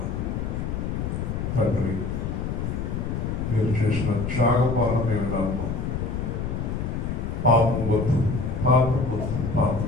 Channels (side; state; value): left; noise; rumble, 2 dB below the sound